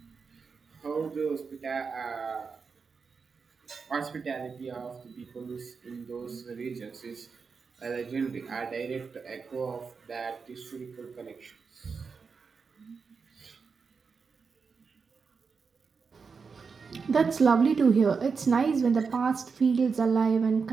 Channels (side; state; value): left; quieter; 5.3 dB